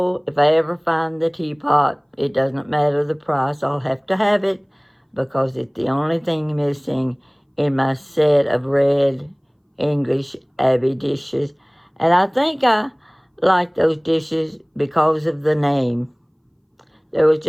if I ever find the teapot, it doesn't matter the price. I'll have to have it because it's the only thing missing in my set of red English Abbey dishes. And I think I like those dishes because of the name. There was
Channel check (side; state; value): both; identical; correlation 1.00